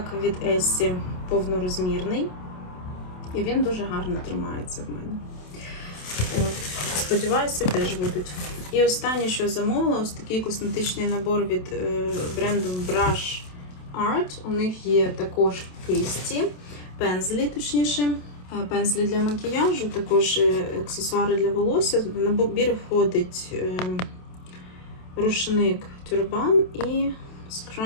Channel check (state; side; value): late; right; 27 ms